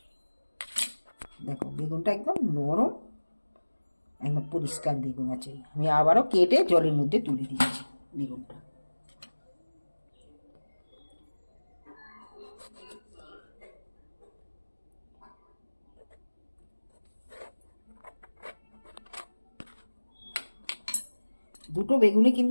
দেখো বেগুনটা একদম নরম, একদম পরিষ্কার বেগুন আছে। আমি আবারও কেটে জলের মধ্যে তুলে দিচ্ছি বেগুনটা। দুটো বেগুনই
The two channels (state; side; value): inverted; both; correlation -1.00